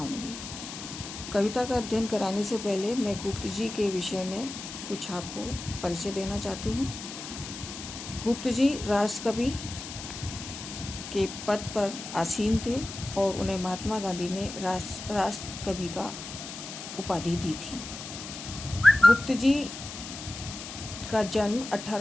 कविता का अध्ययन कराने से पहले मैं गुप्त जी के विषय में कुछ आपको परिचय देना चाहती हूँ। गुप्त जी राष्ट्रकवि के पद पर आसीन थे और उन्हें महात्मा गांधी ने राष्ट्रकवि का उपाधि दी थी। गुप्त जी का जन्म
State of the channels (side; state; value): left; noise; hiss, 10 dB below the sound